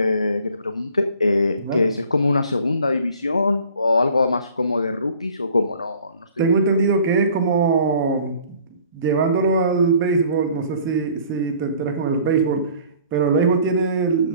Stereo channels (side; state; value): both; inverted; correlation -0.52